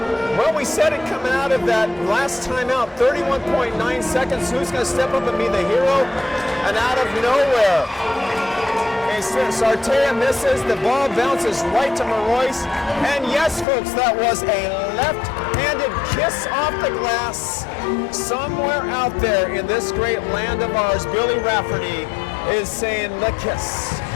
Well, we said it coming out of that last timeout, 31.9 seconds. Who's going to step up and be the hero? And out of nowhere, Sartea misses. The ball bounces right to Marois. And yes, folks, that was a left-handed kiss off the glass. Somewhere out there in this great land of ours, Billy Rafferty is saying the kiss.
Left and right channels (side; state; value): right; drops out; at 13.7 s